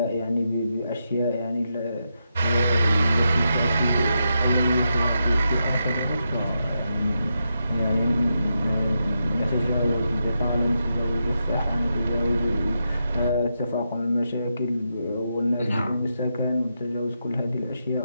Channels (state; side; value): inverted; both; correlation -0.85